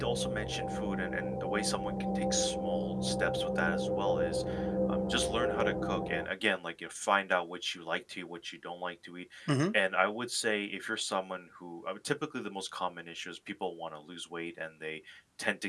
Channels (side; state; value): both; identical; correlation 1.00